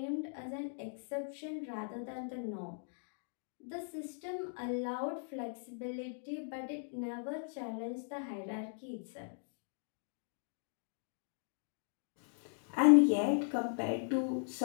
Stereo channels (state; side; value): silent; right; digital silence